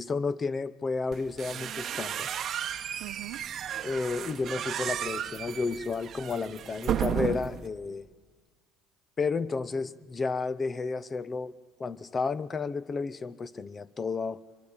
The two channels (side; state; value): both; normal; correlation 0.78